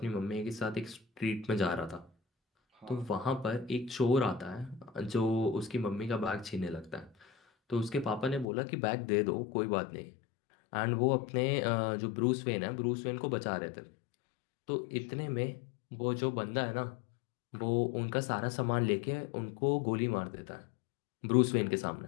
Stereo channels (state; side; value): drops out; right; at 8.5 s